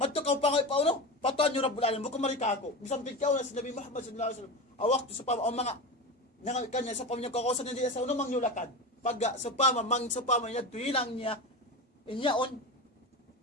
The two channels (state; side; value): normal; both; correlation 0.24